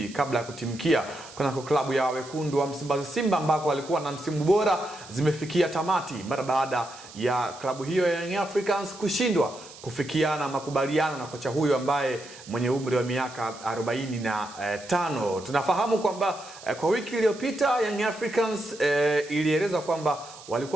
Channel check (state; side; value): noise; right; hiss, 18 dB below the sound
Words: kabla ya kutimkia kunako klabu ya wekundu wa Msimbazi Simba ambako alikuwa na msimu bora zimefikia tamati mara baada ya klabu hiyo ya Young Africans kushindwa kufikiana makubaliano na kocha huyo ambaye mwenye umri wa miaka 45. Tunafahamu kwamba kwa wiki iliyopita Young Africans ilieleza kwamba